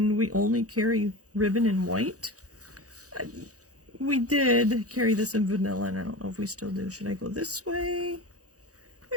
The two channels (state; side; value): late; left; 0.66 ms